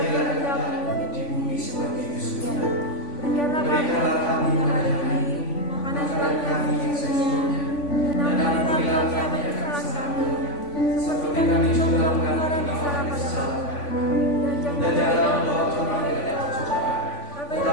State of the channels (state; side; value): late; right; 3.5 ms